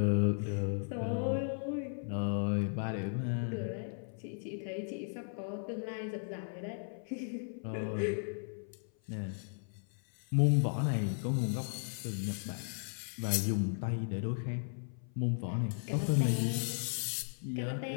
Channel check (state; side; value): silent; right; 54 dB below the other